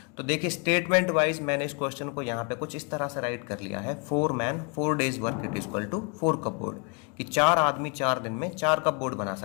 तो देखिए स्टेटमेंट वाइज मैंने इस क्वेश्चन को यहाँ पे कुछ इस तरह से राइट कर लिया है, 4 man 4 days work it equal to 4 cupboard, कि 4 आदमी 4 दिन में 4 कपबोर्ड बना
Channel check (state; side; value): quieter; right; 33.0 dB